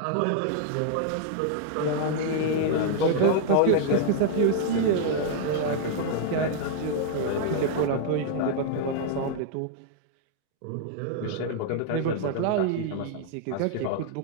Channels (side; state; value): both; different; correlation -0.01